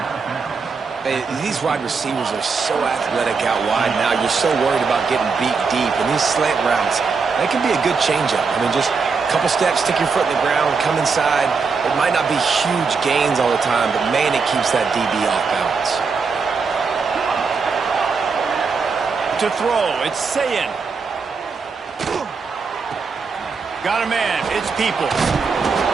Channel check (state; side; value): quieter; left; 5.0 dB